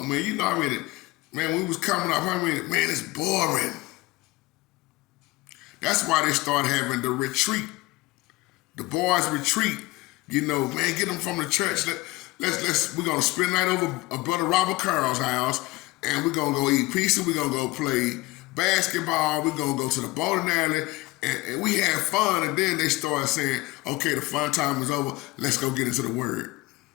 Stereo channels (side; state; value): right; quieter; 20.5 dB